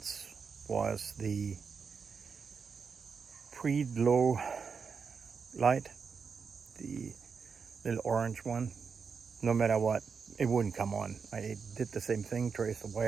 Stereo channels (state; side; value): quieter; left; 5.7 dB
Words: was the pre-glow light, the little orange one. No matter what, it wouldn't come on. I did the same thing, traced the